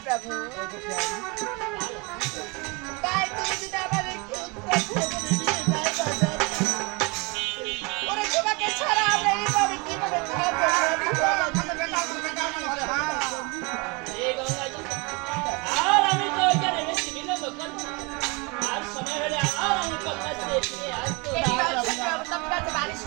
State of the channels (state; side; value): quieter; left; 28.6 dB